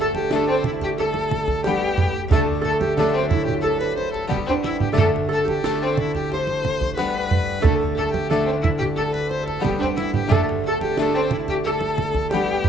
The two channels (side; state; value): left; noise; hum, 16 dB below the sound